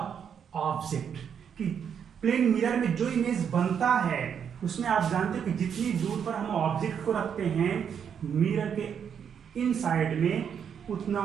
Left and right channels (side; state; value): left; quieter; 7.8 dB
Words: object. कि प्लेन मिरर में जो इमेज बनता है उसमें आप जानते हो कि जितनी दूर पर हम ऑब्जेक्ट को रखते हैं मिरर के इन साइड में,